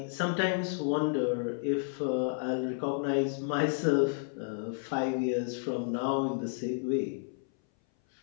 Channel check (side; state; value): right; silent; 57 dB below the other